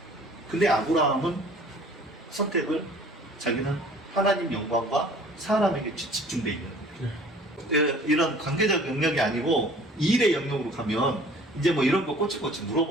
근데 아브라함은 선택을 자기는 하나님 영광과 사람에게 집중돼 있는 거예요. 이런 관계적 영역이 아니고 일의 영역으로 가면 이제 뭐 이런 거 꼬치꼬치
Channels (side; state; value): both; normal; correlation 0.51